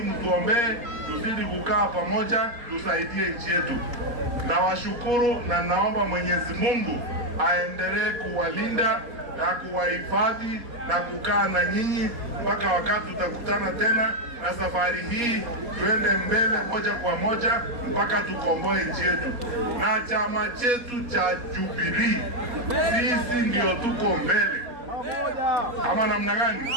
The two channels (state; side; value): late; left; 4.2 ms